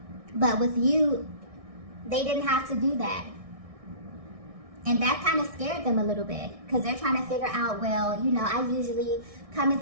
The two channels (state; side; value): late; left; 1.6 ms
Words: But with you, they didn't have to do that. And that kind of scared them a little bit because they're trying to figure out, well, you know, I usually come